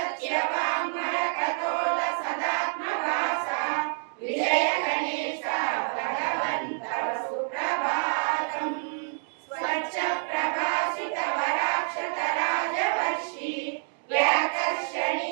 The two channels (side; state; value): left; silent; digital silence